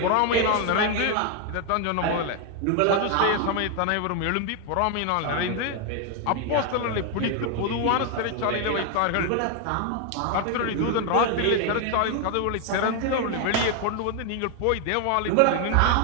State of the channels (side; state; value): both; different; correlation 0.01